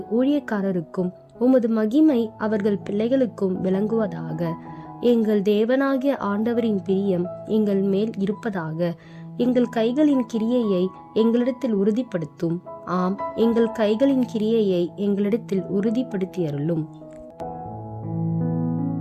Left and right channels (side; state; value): both; identical; correlation 1.00